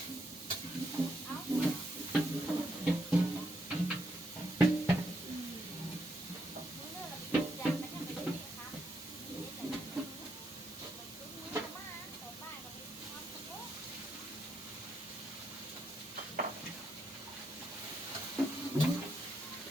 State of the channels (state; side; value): normal; both; correlation 0.78